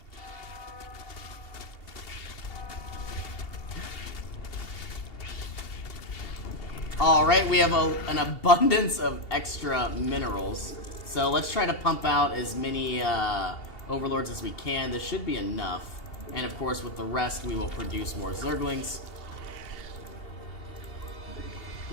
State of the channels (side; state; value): right; late; 2.8 ms